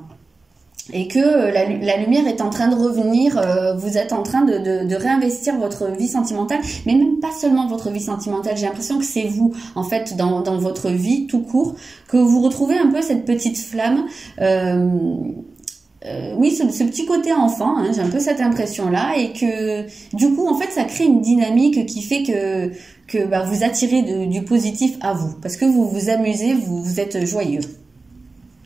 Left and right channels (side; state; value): left; quieter; 3.7 dB